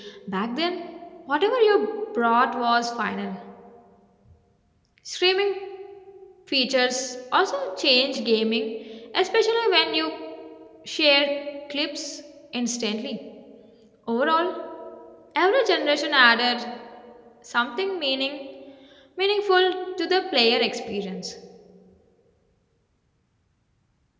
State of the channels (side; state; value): both; identical; correlation 1.00